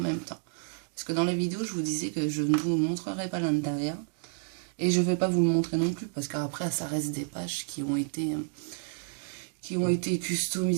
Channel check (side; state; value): left; silent; digital silence